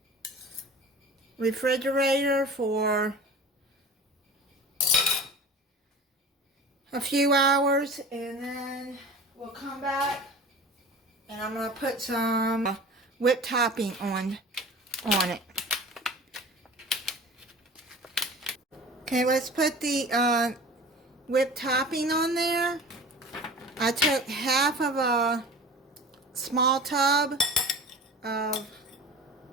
refrigerator for a few hours, and then we'll come back and I'm going to put some whipped topping on it. Okay, let's put the whipped topping on there. I took half of a small tub of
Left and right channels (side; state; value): both; normal; correlation 0.38